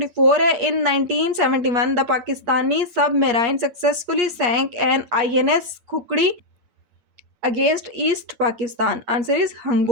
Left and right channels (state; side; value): late; left; 8.4 ms